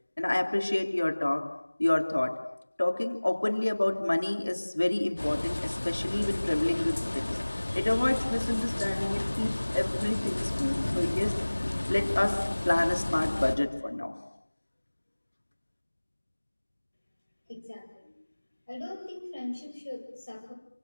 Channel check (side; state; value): both; inverted; correlation -1.00